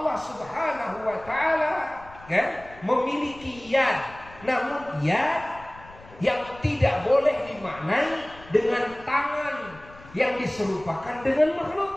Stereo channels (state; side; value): noise; left; rumble, 21 dB below the sound